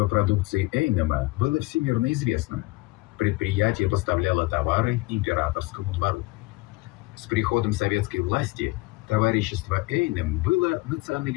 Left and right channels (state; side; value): quieter; right; 22.1 dB